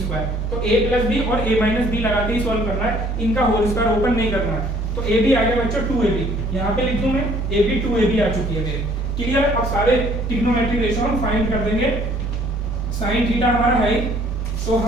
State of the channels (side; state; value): both; normal; correlation 0.59